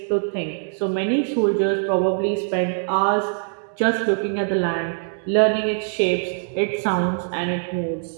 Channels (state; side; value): silent; left; digital silence